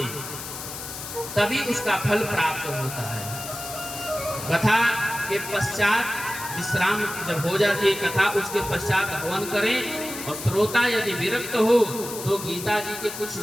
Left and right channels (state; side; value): noise; left; hiss, 9 dB below the sound